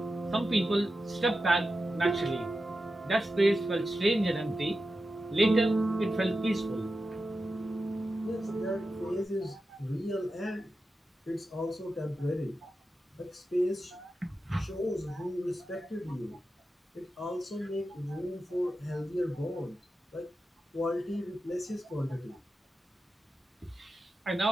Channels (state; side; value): normal; both; correlation 0.91